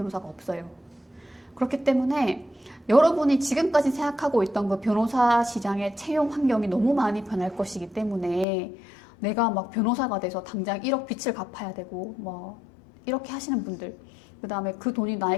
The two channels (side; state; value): right; drops out; at 8.5 s